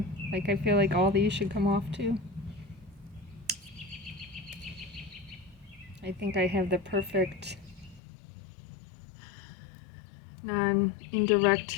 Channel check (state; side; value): drops out; right; at 8.0 s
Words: like I feel like all these should come off too. I think I have the perfect non-indirect